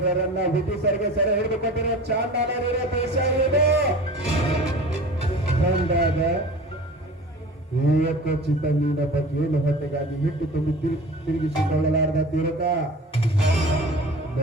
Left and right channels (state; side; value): normal; both; correlation 0.39